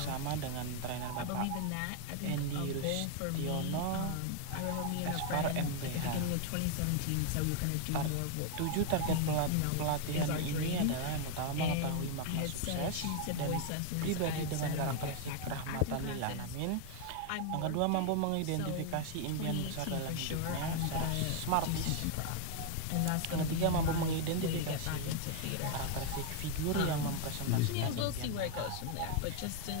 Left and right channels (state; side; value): different; both; correlation 0.00